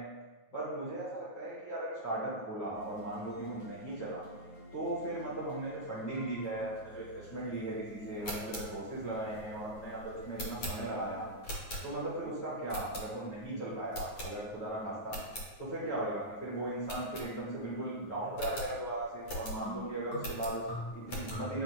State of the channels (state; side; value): late; right; 9.4 ms